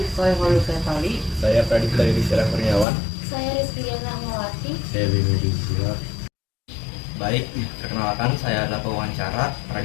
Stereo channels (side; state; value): right; drops out; at 2.9 s